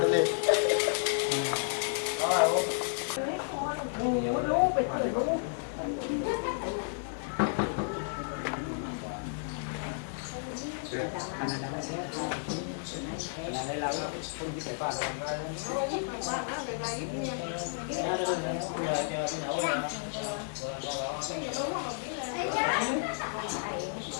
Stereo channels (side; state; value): right; silent; 56 dB below the other